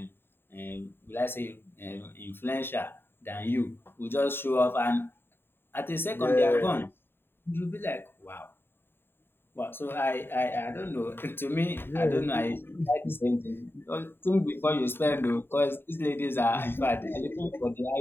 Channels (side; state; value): right; late; 0.11 ms